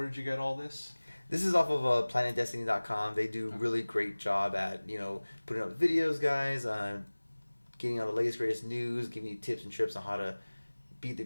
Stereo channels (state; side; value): inverted; both; correlation -1.00